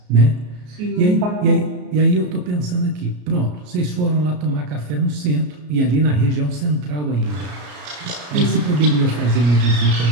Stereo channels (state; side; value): late; left; 33 ms